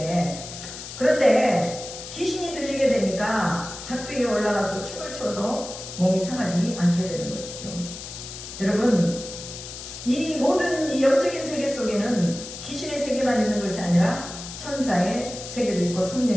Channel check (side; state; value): left; noise; hiss, 11 dB below the sound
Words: 그런데 귀신이 들리게 되니까 작두에 올라가서 춤을 춰도 몸이 상하지 않게 되는 것이죠. 여러분, 이 모든 이 영적인 세계 속에는 귀신의 세계만 있는 것이 아니라 천사의 세계도 있고